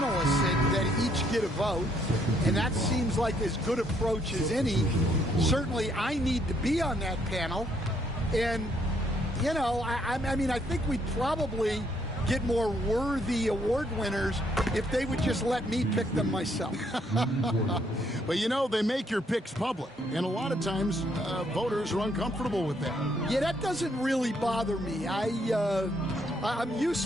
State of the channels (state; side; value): normal; both; correlation 0.70